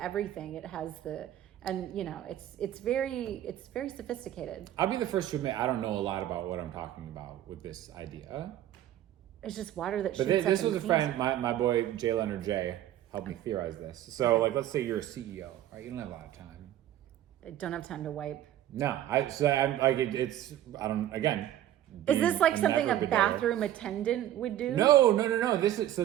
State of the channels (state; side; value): quieter; left; 12.5 dB